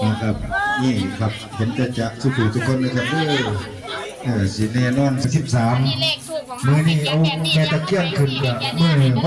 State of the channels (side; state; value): both; identical; correlation 1.00